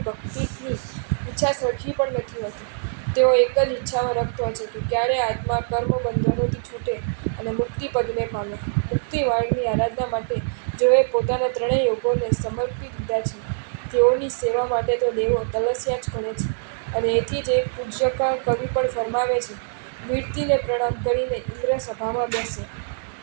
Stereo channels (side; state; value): left; silent; 63 dB below the other